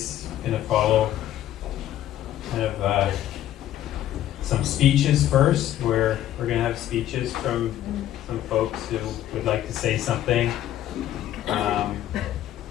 going to follow kind of some speeches first, where we're going to have speeches from some folks who would like to say something. And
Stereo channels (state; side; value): quieter; right; 12.4 dB